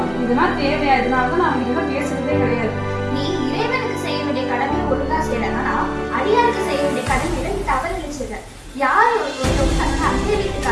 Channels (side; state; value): both; identical; correlation 1.00